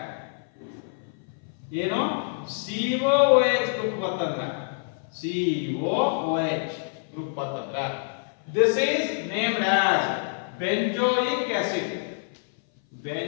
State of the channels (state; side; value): silent; right; 57 dB below the other